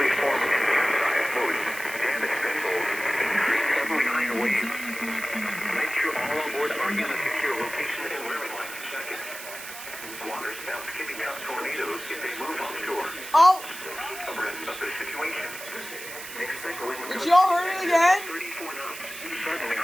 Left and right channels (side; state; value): right; noise; hiss, 11 dB below the sound